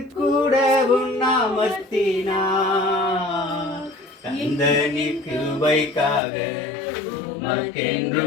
கூட உண்ணாமத்தினா கந்தனி கிருபைக்காக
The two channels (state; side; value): drops out; right; at 6.2 s